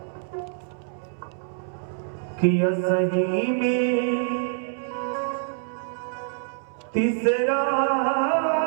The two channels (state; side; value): silent; left; 61 dB below the other